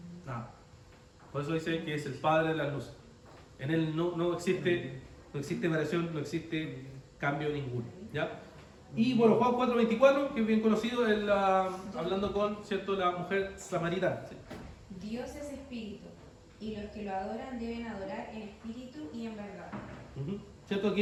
Nada. Por eso dice que es el Padre de las luces. En Él no existe variación, no existe cambio ninguno, ¿ya? Y bueno, Juan 4:24, que es bien conocido, hablando con, ¿cierto?, la mujer samaritana. ¿Sí? Dios es espíritu, y los que lo adoran deben adorar en espíritu y en verdad. ¿Cierto? Aquí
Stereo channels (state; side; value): identical; both; correlation 1.00